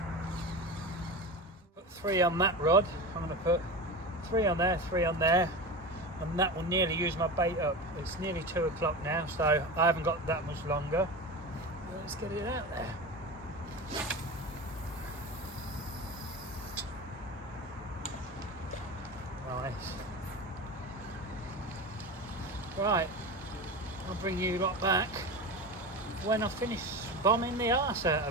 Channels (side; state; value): both; normal; correlation 0.26